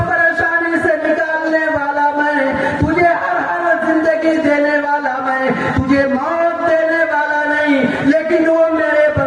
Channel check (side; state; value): both; identical; correlation 1.00